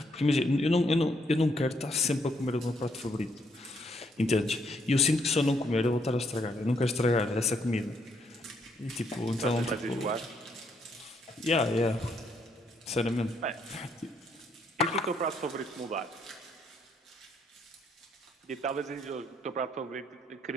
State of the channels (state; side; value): normal; both; correlation 0.73